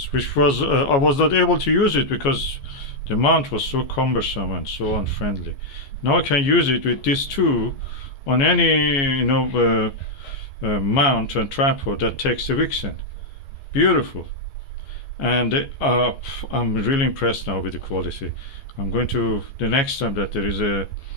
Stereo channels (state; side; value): late; right; 14 ms